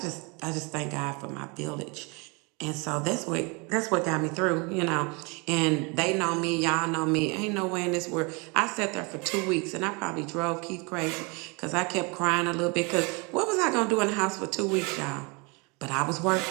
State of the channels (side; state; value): left; quieter; 30.0 dB